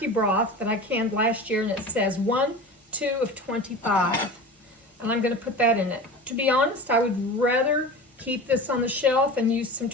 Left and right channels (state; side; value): normal; both; correlation 0.33